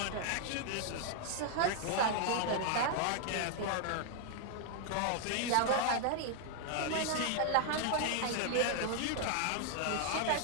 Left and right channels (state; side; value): different; both; correlation 0.00